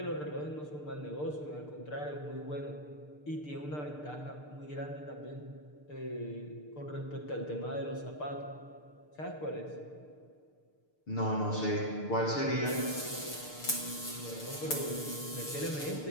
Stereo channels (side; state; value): right; late; 6.7 ms